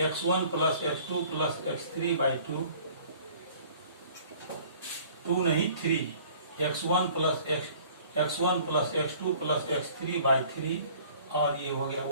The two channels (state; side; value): inverted; both; correlation -0.52